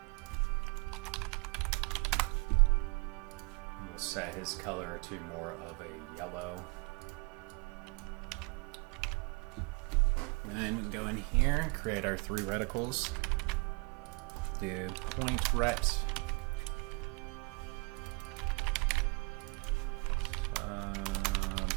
And we'll set his color to more of a yellow. And then we can go in here and create our three reticles. Do point ret.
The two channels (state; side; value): quieter; left; 29.5 dB